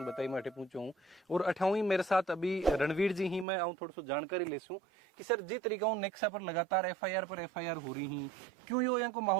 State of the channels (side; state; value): left; drops out; at 3.5 s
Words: बताई मैं अठे पूछूं और अठावी मेरे साथ अभी रणवीर जी ही मैं आऊं थोड़ा सा जानकारी लेसूं कि सर जिस तरीका हूं नेक्सा पर लगातार एफआईआर पर एफआईआर हो रही ही क्यों यो यहाँ को